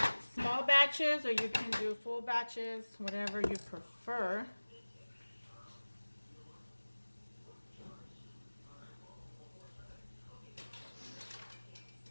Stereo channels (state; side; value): inverted; both; correlation -1.00